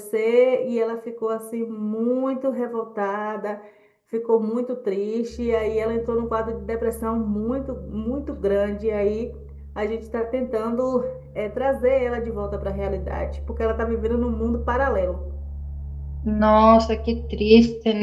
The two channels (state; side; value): identical; both; correlation 1.00